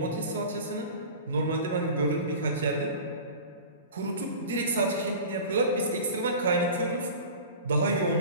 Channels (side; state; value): both; inverted; correlation -0.36